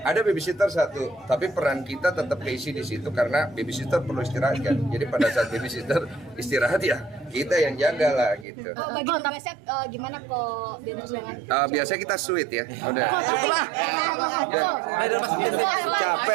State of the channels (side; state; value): left; drops out; at 8.5 s